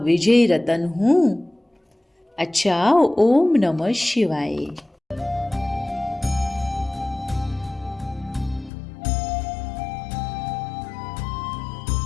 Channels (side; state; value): right; drops out; at 8.7 s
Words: रतन हूँ। अच्छा, ओम नमः शिवाय।